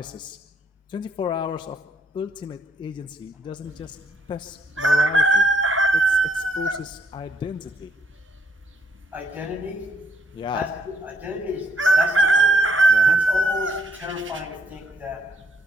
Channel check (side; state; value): both; normal; correlation 0.70